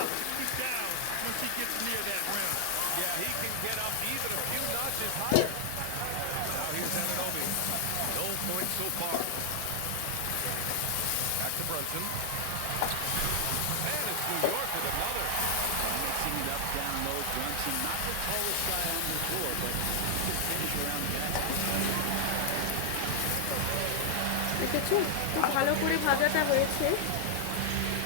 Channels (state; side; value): different; both; correlation 0.00